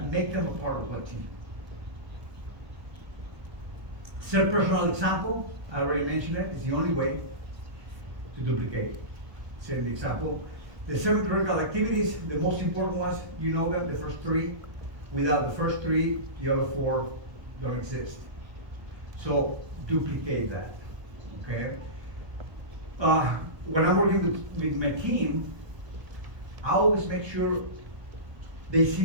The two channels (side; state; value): left; late; 1.2 ms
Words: make them a part of a team. Set personal example, I already mentioned it, it's the only way to duplicate. Set the example. The 7 critical activities, the most important ones, you know them, the first 3. Without the first 3, the other 4 don't exist. So duplicate that, okay? When I'm working with my team, I always make sure they